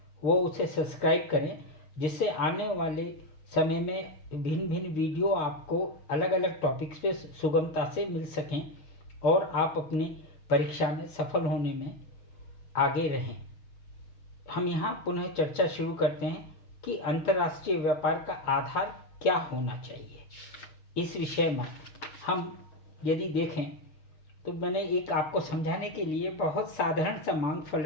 वो उसे सब्सक्राइब करें, जिससे आने वाले समय में भिन्न भिन्न वीडियो आपको अलग अलग टॉपिक्स पे सुगमता से मिल सकें और आप अपनी परीक्षा में सफल होने में आगे रहें। हम यहाँ पुनः चर्चा शुरू करते हैं कि अंतर्राष्ट्रीय व्यापार का आधार क्या होना चाहिए। इस विषय में हम यदि देखें तो मैंने एक आपको समझाने के लिए बहुत साधारण सा मांग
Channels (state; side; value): late; right; 6.4 ms